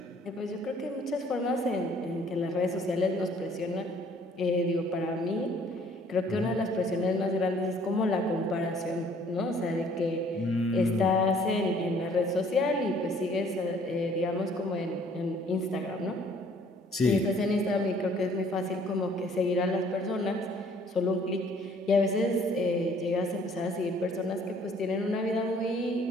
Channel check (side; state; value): both; normal; correlation 0.59